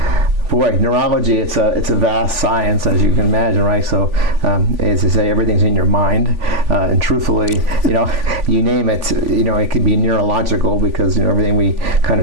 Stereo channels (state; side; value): late; left; 3.5 ms